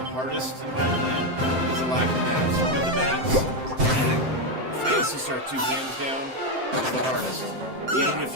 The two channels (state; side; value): late; left; 7.7 ms